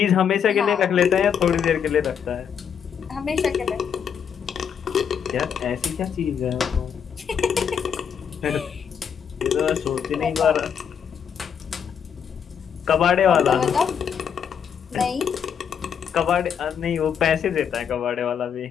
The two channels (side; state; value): right; quieter; 7.7 dB